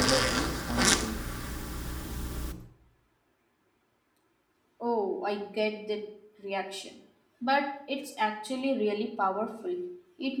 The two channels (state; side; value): identical; both; correlation 1.00